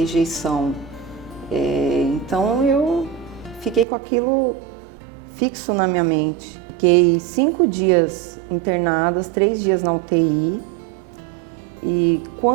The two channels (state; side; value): drops out; left; at 3.9 s